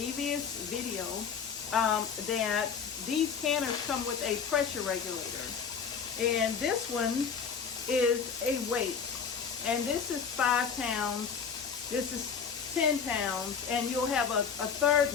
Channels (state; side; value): quieter; right; 6.5 dB